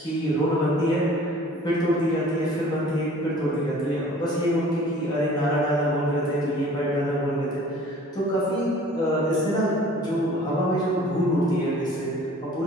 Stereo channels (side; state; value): both; normal; correlation 0.49